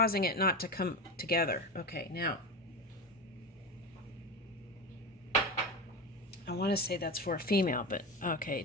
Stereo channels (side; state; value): both; normal; correlation 0.21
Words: it not to come together. Okay, now I want to say that's for a female, but okay,